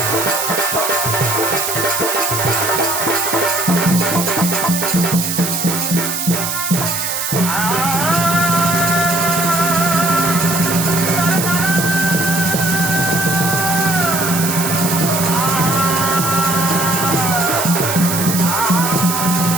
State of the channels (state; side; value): noise; right; hiss, 2 dB below the sound